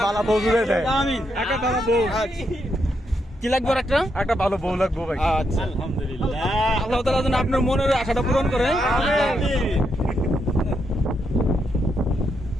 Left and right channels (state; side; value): normal; both; correlation 0.80